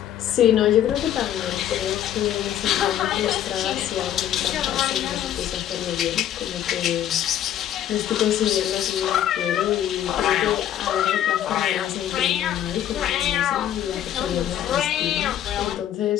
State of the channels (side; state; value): right; quieter; 11.1 dB